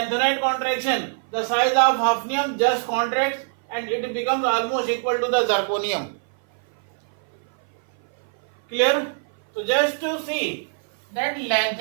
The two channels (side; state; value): left; silent; 57 dB below the other